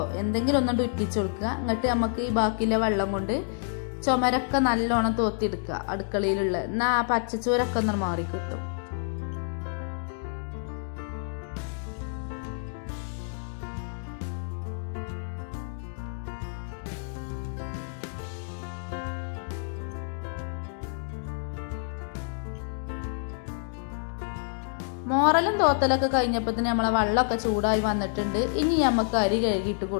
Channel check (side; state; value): right; silent; digital silence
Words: എന്തെങ്കിലും ഒന്നും ഉറ്റിച്ചു കൊടുക്കുക. എന്നിട്ട് നമുക്ക് ഈ ബാക്കിയുള്ള വെള്ളം കൊണ്ട് ചുമരൊക്കെ നല്ലോണം തോത്തിയെടുക്കുക അടുക്കളയിലുള്ള. എന്നാൽ ആ പച്ചച്ചോരൊക്കെ ഒന്ന് മാറി കിട്ടും. മോറലും തോത്തലൊക്കെ കഴിഞ്ഞപ്പോൾ നമ്മളെ വെള്ളമൊക്കെ ചൂടായി വന്നിട്ടുണ്ട്. ഇനി നമുക്ക് അരി കഴുകിയിട്ട്